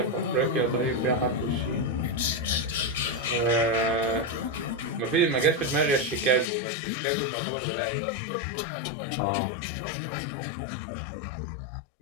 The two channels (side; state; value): right; drops out; at 6.5 s